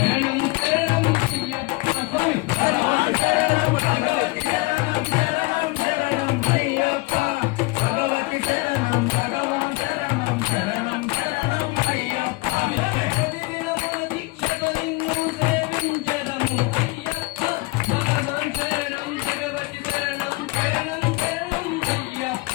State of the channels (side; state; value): right; quieter; 23.9 dB